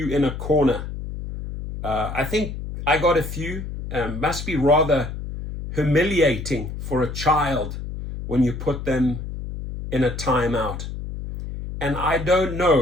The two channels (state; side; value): noise; left; hum, 8 dB below the sound